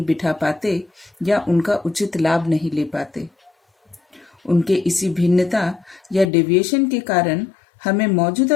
बिठा पाते या उनका उचित लाभ नहीं ले पाते। उनके इसी भिन्नता या डेविएशन के कारण हमें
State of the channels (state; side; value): drops out; right; at 6.3 s